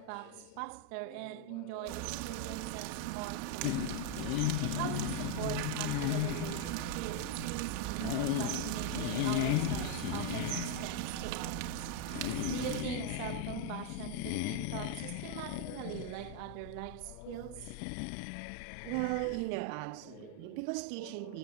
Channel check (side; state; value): both; different; correlation 0.00